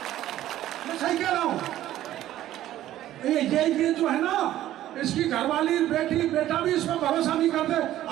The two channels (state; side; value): quieter; left; 13.4 dB